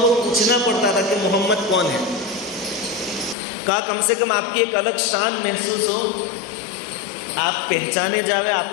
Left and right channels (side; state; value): right; drops out; at 3.4 s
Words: پوچھنا پڑتا تھا کہ محمد کون ہے. کہا کم سے کم آپ کی ایک الگ شان محسوس ہو، آپ پہچانے جاوے،